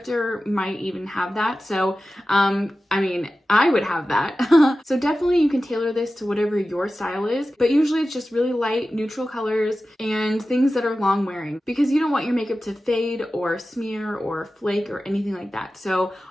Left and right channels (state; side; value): normal; both; correlation 0.94